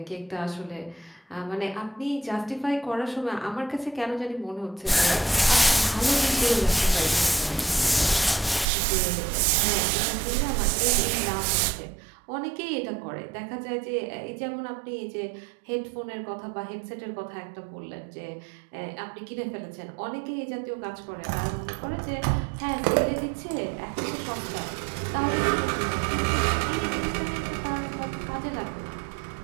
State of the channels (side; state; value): left; drops out; at 8.7 s